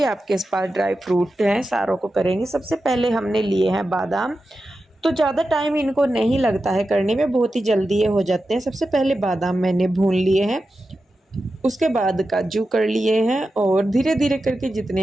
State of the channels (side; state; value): both; normal; correlation 0.91